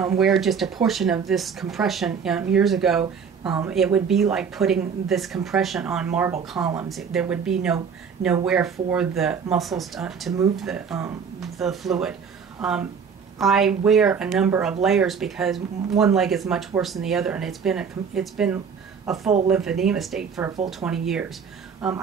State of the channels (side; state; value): left; quieter; 6.4 dB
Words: wear just a portion of this compression years ago, it would be like putting this compression on marble columns. There would be nowhere for the muscles to move the fluid. I wear a number of layers because one leg is much worse than the other, and it's been a full lymphedema state for a full 20 years.